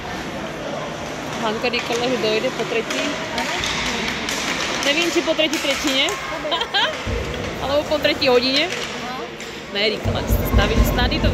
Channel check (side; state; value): both; identical; correlation 1.00